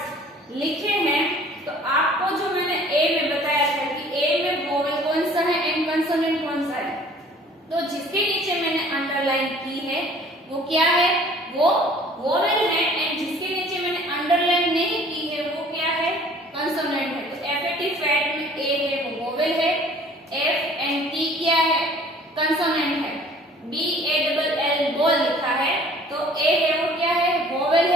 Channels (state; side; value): normal; both; correlation 0.52